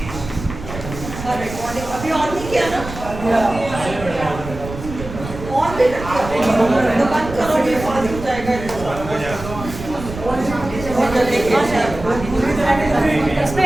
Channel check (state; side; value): noise; right; rumble, 11 dB below the sound